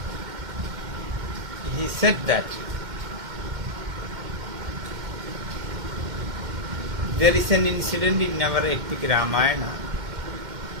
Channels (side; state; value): left; late; 2.1 ms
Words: He said that there is an incident in our epic Ramayana.